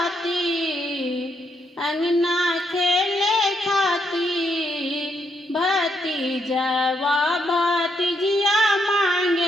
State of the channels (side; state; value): both; normal; correlation 0.77